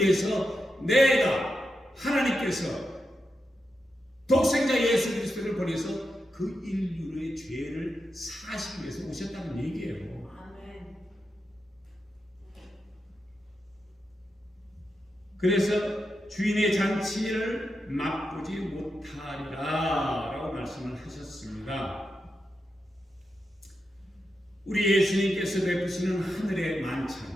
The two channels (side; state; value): both; normal; correlation 0.87